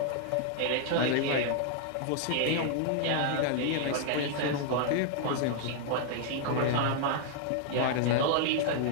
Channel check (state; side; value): different; both; correlation -0.01